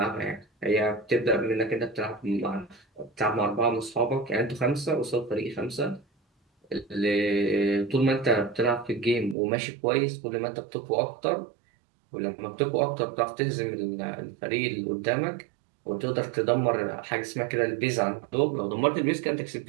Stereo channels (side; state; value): left; drops out; at 9.3 s